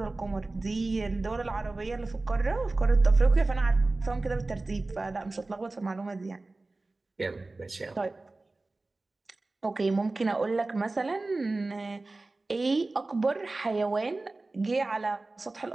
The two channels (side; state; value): left; quieter; 3.2 dB